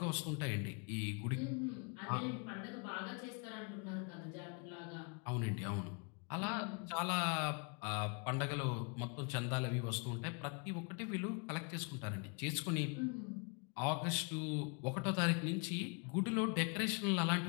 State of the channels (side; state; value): right; quieter; 35.7 dB